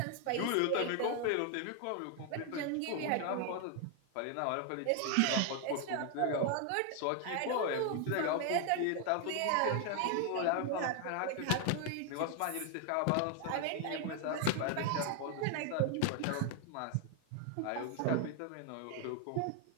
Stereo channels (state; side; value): different; both; correlation 0.00